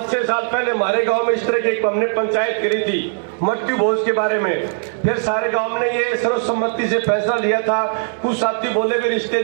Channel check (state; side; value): silent; left; 66 dB below the other